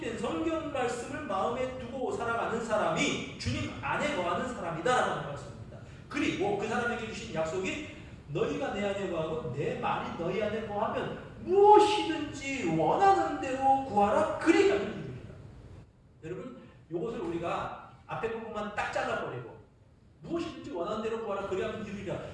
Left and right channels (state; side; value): identical; both; correlation 1.00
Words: 성경 말씀을 마음에 두고 살아가는 사람이 주님 안에 거하는 사람이다라는 말씀입니다. 그리고 그 사람에게 주신 약속이 너희가 내 안에 거하고 내 말이 너희 안에 거하면 무엇이든지 원하는 대로 구하라 그리 가는 길입니다. 여러분, 이것을 우리가 앞에 부분만 딱 잘라버리고 무엇이든지 원하는 대로 구하라 그리하면 이루리라.